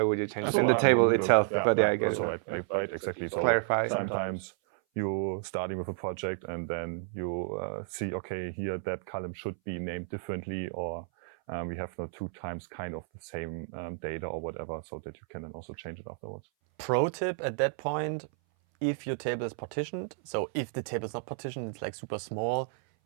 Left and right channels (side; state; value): left; silent; 57 dB below the other